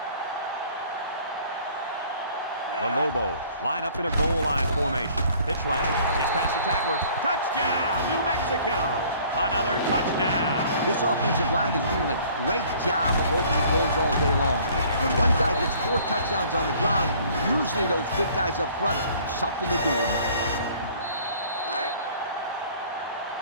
The Lobos line up in a goal line formation. Pitch left, gets past the tackler. Touchdown, New Mexico! Another touchdown. This offensive line is doing a great job of opening holes all day long. When one guy gets 4 touchdowns on the ground, usually those big guys up front have something to do with it.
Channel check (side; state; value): both; inverted; correlation -0.55